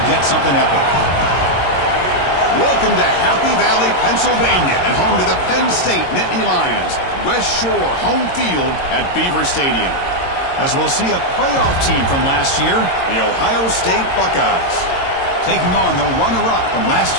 get something epic. Welcome to Happy Valley, Pennsylvania, and home to the Penn State Nittany Lions. West Shore home field at Beaver Stadium. As we'll see a playoff team from last year, the Ohio State Buckeyes, taking on the runner-up from last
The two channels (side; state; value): right; late; 22 ms